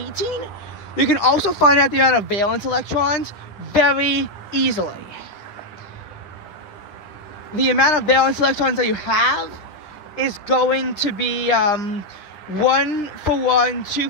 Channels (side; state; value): right; late; 10 ms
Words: you can also find out the amount of valence electrons very easily. The amount of valence electrons that you have is going to be 1 for 1, 2